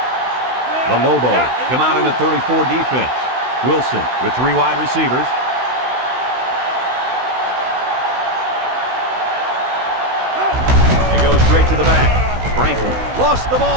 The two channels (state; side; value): late; left; 16 ms